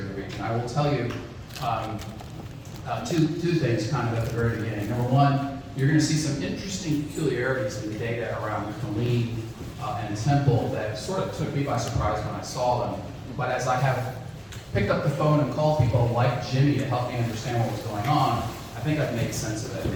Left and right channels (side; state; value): both; identical; correlation 1.00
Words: in the region. I will tell you two things kind of at the very beginning. Number one, you're going to see some interesting peculiarities in the data around Clean and Temple that sort of took me by surprise when I saw them. But as I have picked up the phone and called people like Jimmy to help me understand what was going on, I think I've made sense of it.